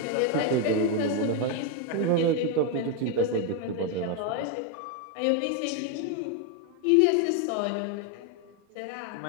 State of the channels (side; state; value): both; different; correlation 0.02